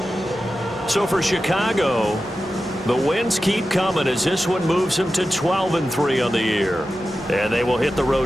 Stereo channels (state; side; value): normal; both; correlation 0.92